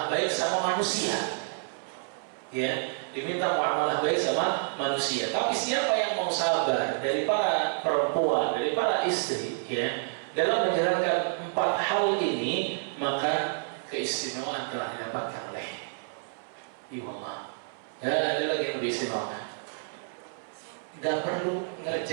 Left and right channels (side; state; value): left; silent; 59 dB below the other